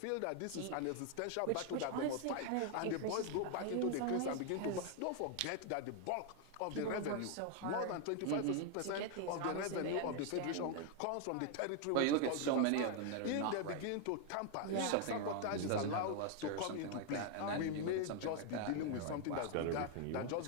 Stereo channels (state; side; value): different; both; correlation 0.00